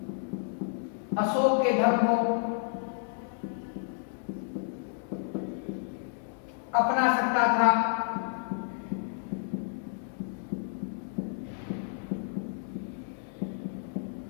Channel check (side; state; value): right; silent; digital silence